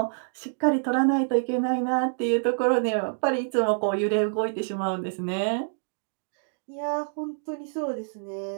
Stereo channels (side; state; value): left; silent; digital silence